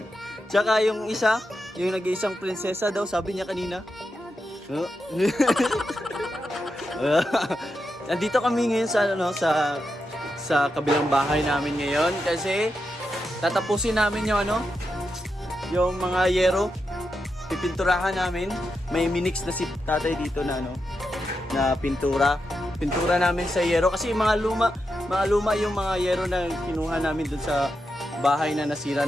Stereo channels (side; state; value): both; normal; correlation 0.87